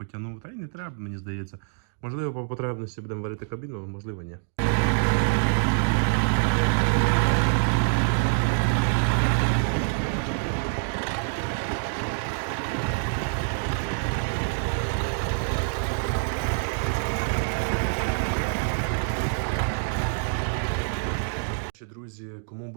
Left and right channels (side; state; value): left; silent; digital silence